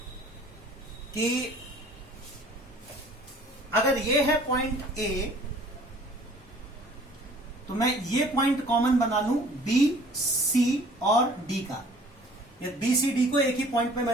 कि अगर ये है पॉइंट A, तो मैं ये पॉइंट कॉमन बना लूं B, C और D का। ये B, C, D को एक ही पॉइंट पे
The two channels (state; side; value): normal; both; correlation 0.52